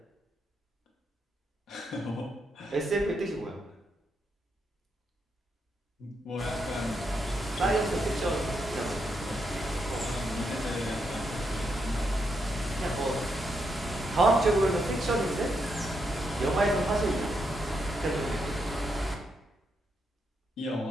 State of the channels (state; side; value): normal; both; correlation 0.81